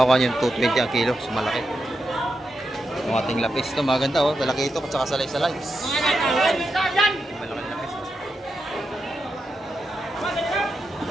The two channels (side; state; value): both; normal; correlation 0.86